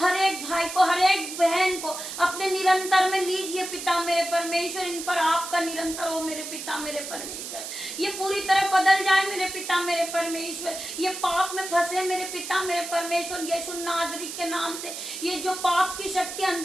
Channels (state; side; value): noise; right; hiss, 8 dB below the sound